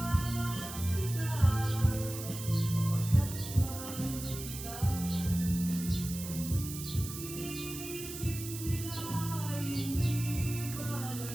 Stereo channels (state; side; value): noise; right; hiss, 9 dB below the sound